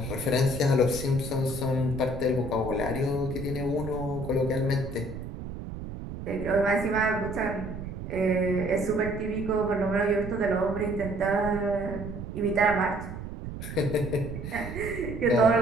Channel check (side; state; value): right; noise; rumble, 8 dB below the sound